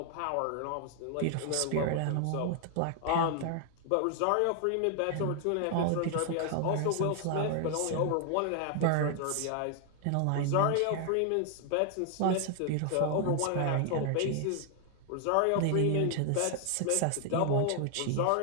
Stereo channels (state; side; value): different; both; correlation 0.00